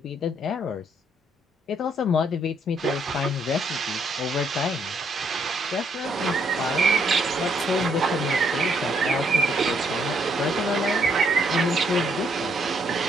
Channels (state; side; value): normal; both; correlation 0.71